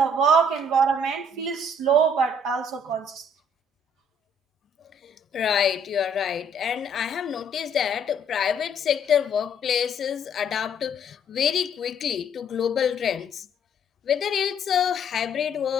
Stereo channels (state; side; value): normal; both; correlation 0.63